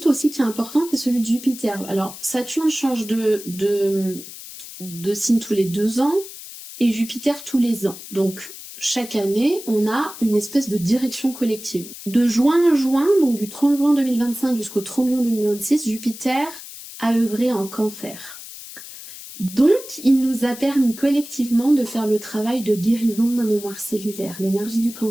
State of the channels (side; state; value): left; noise; hiss, 14 dB below the sound